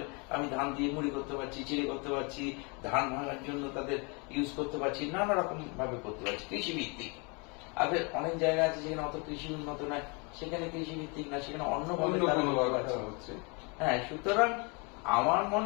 আমি ধান দিয়ে মুড়ি করতে পারছি, চিড়ে করতে পারছি, ধান ভাঙার জন্য তাদের ইউজ করতে পারছি, নানা রকম ভাবে করতে পারছি কৃষি ভিত্তিক। আবার অনেক জায়গা আছে যেখানে অত কৃষি উন্নত নয়, সেখানে কৃষি ভিত্তিক না, সেখানে অন্যভাবে হচ্ছে। হ্যাঁ, সুতরাং আমার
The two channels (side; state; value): right; quieter; 31.5 dB